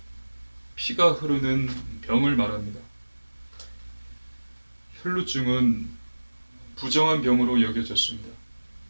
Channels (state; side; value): inverted; both; correlation -1.00